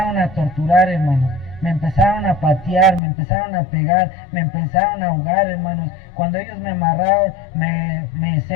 a torturar, hermanos. Me empezaron a patear, me empezaron a pegar, me empezaron a ahogar, hermanos. Cuando ellos me amarraron, me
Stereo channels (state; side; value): drops out; right; at 3.0 s